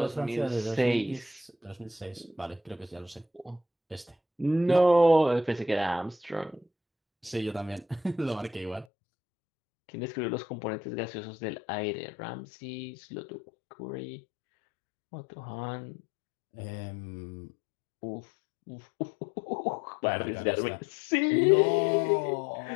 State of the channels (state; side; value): drops out; right; at 8.8 s